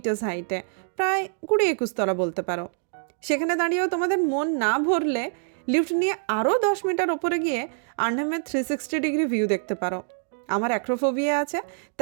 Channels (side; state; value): left; silent; digital silence